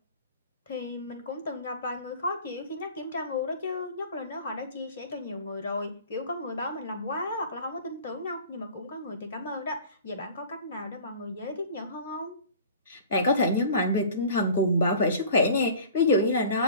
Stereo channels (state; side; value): inverted; both; correlation -0.43